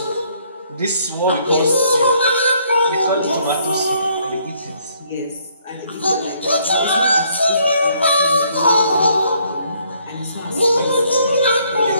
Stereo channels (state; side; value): inverted; both; correlation -0.66